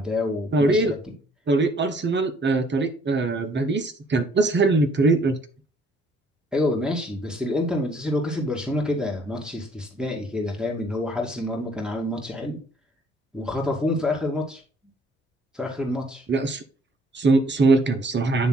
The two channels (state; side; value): normal; both; correlation 0.62